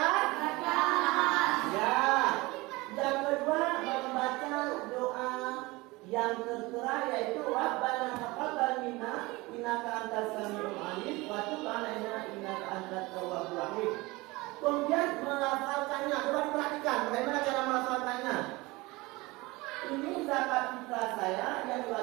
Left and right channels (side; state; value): left; quieter; 22.4 dB